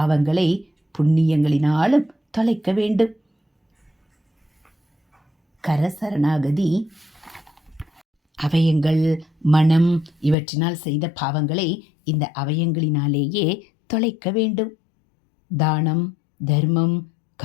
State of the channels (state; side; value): drops out; right; at 10.4 s